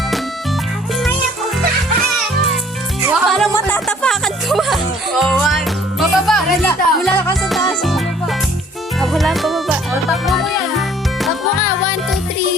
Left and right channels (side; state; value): both; normal; correlation 0.56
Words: Parang matatapakan ko ba? Oh, one. Bababa. Mula ka sa taas. Bababa. Wala pa baba. Takbo mo yan. Takbo ka. 1, 2,